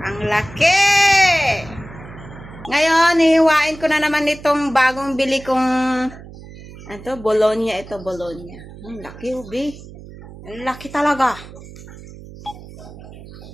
ang laki! Ngayon, hihiwain ko na naman itong bagong bili kong Bologna. Ito, Bologna. Ang laki, ubi. Ang laki talaga.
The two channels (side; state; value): right; noise; hum, 17 dB below the sound